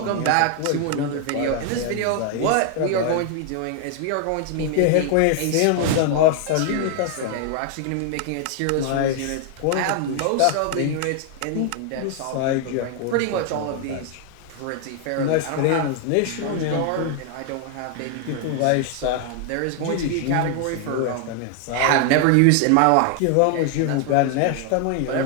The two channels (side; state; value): both; different; correlation 0.00